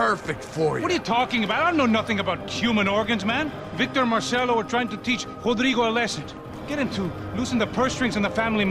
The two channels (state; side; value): identical; both; correlation 1.00